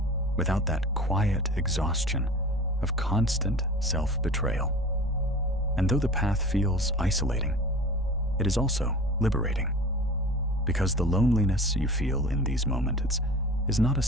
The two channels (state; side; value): normal; both; correlation 0.37